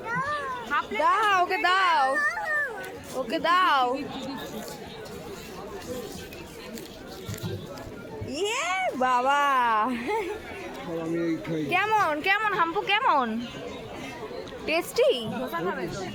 দাও ওকে, দাও ওকে, দাও। ইয়ে বাবা, কেমন কেমন হাম্পু, কেমন টেস্টি?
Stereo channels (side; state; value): both; identical; correlation 1.00